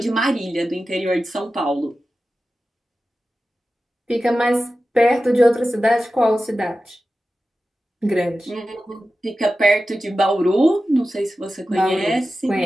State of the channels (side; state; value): both; normal; correlation 0.94